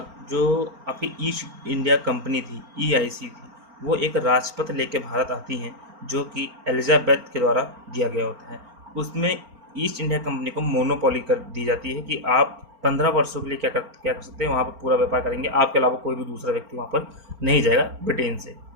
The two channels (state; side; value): late; left; 4.4 ms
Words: जो आपकी ईस्ट इंडिया कंपनी थी, EIC थी, वो एक राजपत्र लेके भारत आती हैं, जो कि एलिजाबेथ के द्वारा दिया गया होता है। उसमें ईस्ट इंडिया कंपनी को मोनोपोली कर दी जाती है कि आप 15 वर्षों के लिए क्या कर सकते हैं, वहाँ पर पूरा व्यापार करेंगे, आपके अलावा कोई भी दूसरा व्यक्ति वहाँ पर नहीं जाएगा ब्रिटेन से।